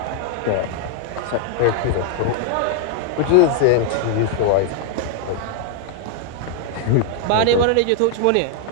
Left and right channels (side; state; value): both; different; correlation 0.00